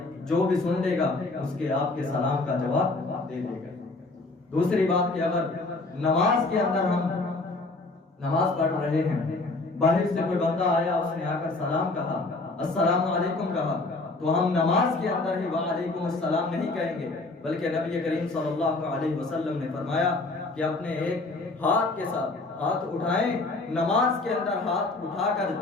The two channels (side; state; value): right; quieter; 3.2 dB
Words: جو بھی سن لے گا اس کے آپ کے سلام کا جواب دے دے گا۔ دوسری بات کہ اگر نماز کے اندر ہم نماز پڑھ رہے ہیں، باہر سے کوئی بندہ آیا، اس نے آ کر سلام کہا، السلام علیکم کہا، تو ہم نماز کے اندر ہی وعلیکم السلام نہیں کہیں گے، بلکہ نبی کریم صلی اللہ علیہ وسلم نے فرمایا کہ اپنے ایک ہاتھ کے ساتھ ہاتھ اٹھائیں، نماز کے اندر ہاتھ اٹھا کر